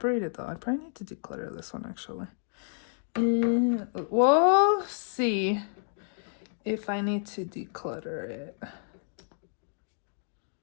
though. I probably need to declutter this one actually. We'll see if I need to declutter it.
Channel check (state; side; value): silent; right; digital silence